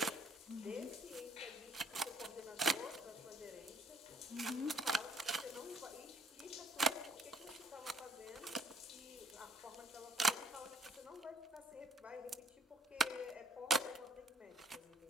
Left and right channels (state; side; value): normal; both; correlation 0.61